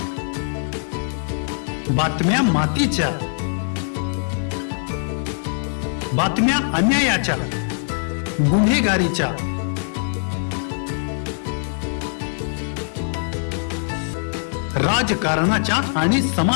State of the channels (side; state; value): right; silent; 64 dB below the other